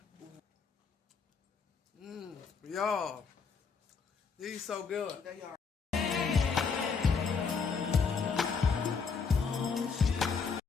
Y'all. These so good. They are.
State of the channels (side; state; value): right; quieter; 5.5 dB